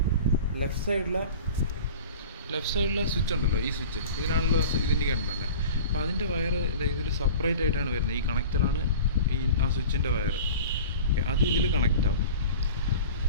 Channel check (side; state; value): both; inverted; correlation -0.39